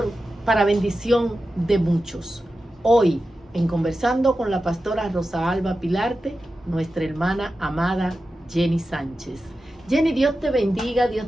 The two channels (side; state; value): both; normal; correlation 0.92